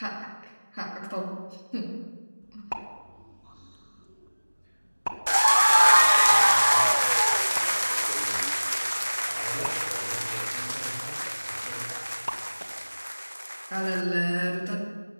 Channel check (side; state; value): both; inverted; correlation -1.00